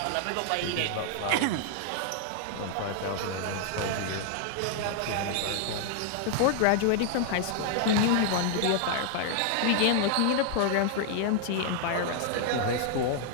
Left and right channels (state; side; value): different; both; correlation 0.00